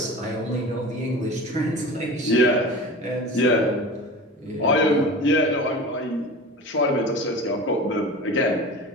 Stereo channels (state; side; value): normal; both; correlation 0.34